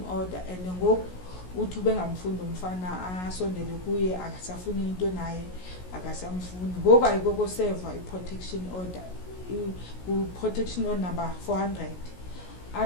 order and ngoku uthi ubengamfundi umfana asondele kuye akasafuni into naye akasamfuni ngoku ayikoko serve iprotection order uprotection order number 400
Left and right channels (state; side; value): late; right; 16 ms